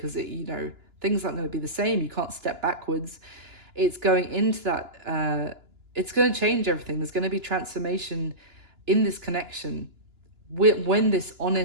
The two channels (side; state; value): left; late; 2.9 ms